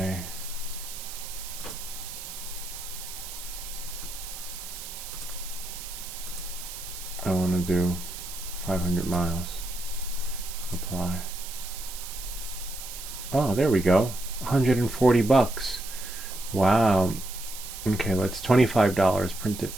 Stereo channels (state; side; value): noise; right; hiss, 10 dB below the sound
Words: I want to do 500 miles. Apply. Oh, there we go. 140 bucks. Wow. Okay, let's $25 printed